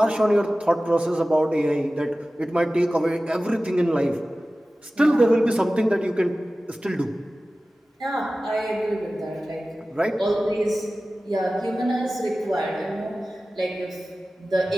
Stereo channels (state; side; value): normal; both; correlation 0.96